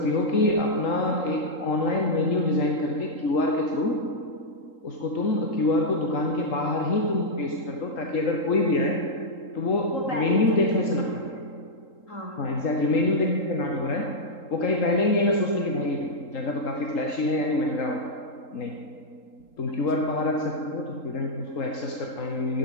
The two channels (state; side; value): late; right; 3.8 ms